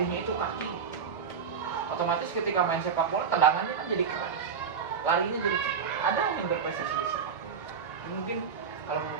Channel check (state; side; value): quieter; left; 6.4 dB